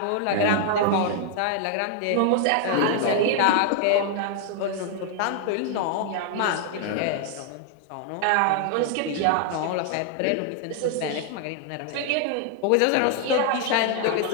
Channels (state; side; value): different; both; correlation 0.00